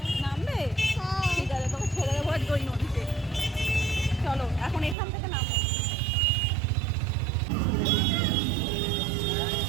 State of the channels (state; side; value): drops out; left; at 5.0 s